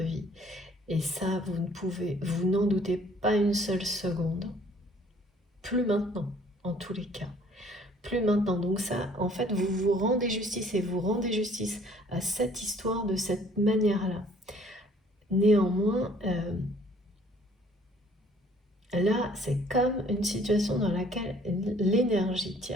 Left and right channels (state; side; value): normal; both; correlation 0.58